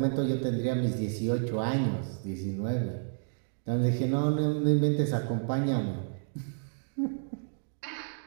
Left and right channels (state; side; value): silent; left; digital silence